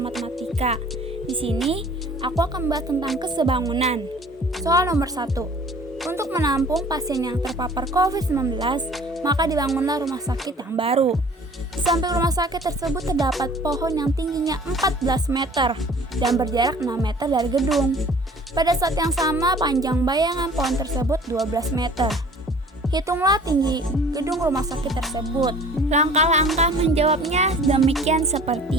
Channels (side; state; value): both; normal; correlation 0.50